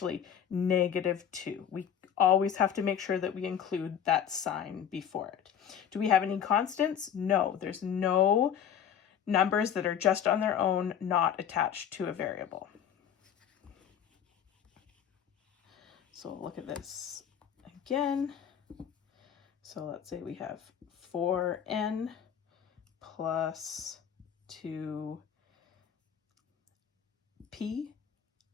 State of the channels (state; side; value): quieter; right; 8.7 dB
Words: -2. We always have to make sure that we include that sign before it. Do we have any constants? No, there's no numbers that are just on their own, not attached to a variable. So look at this again. So let's say we have 4n plus 2p